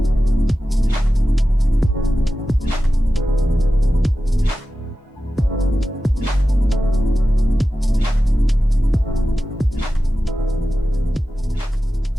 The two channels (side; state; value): both; normal; correlation 0.93